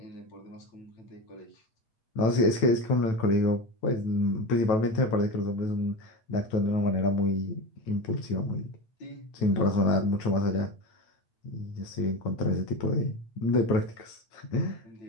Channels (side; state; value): right; late; 9.1 ms